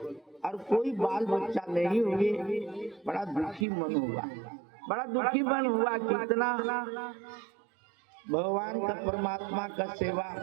और कोई बाल बच्चा नहीं हुए। बड़ा दुखी मन हुआ, बड़ा दुखी मन हुआ। कितना भगवान का, परमात्मा का सेवा,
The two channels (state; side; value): drops out; left; at 3.7 s